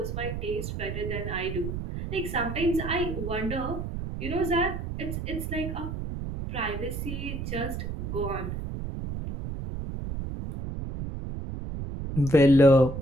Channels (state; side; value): noise; right; rumble, 5 dB below the sound